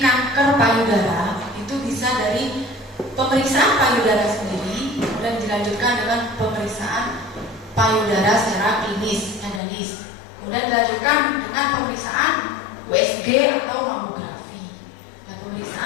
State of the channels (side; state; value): right; drops out; at 9.6 s